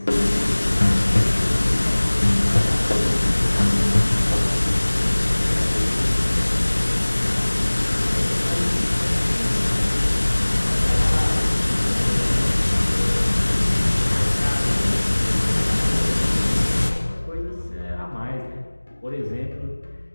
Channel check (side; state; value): both; inverted; correlation -1.00